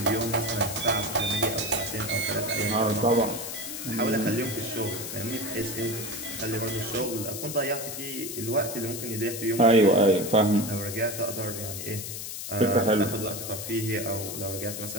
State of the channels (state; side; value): noise; left; hiss, 7 dB below the sound